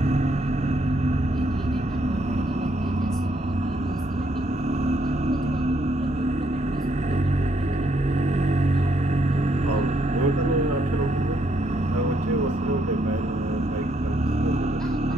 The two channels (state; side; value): normal; both; correlation 0.73